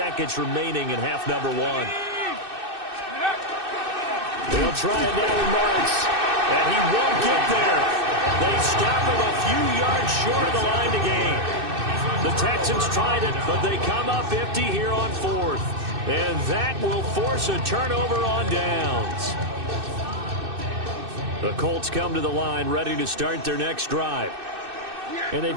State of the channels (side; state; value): left; late; 2.6 ms